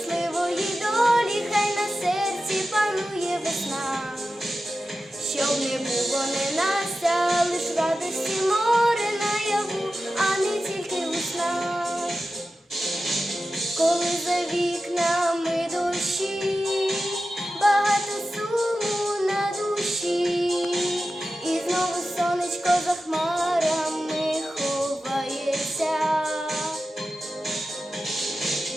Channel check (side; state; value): both; normal; correlation 0.93